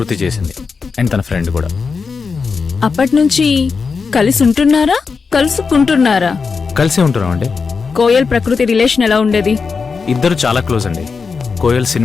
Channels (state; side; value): quieter; right; 5.1 dB